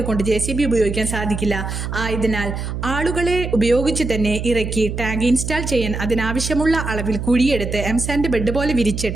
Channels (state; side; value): noise; right; hum, 5 dB below the sound